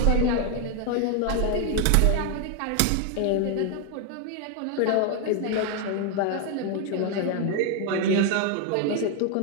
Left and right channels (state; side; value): different; both; correlation 0.01